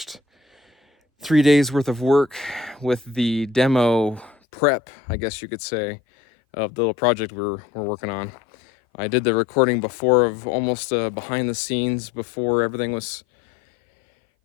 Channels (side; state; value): right; drops out; at 4.4 s